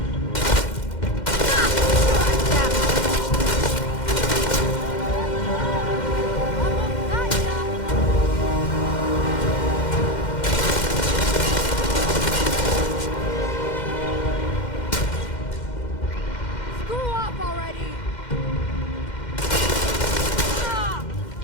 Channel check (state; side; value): late; right; 2.1 ms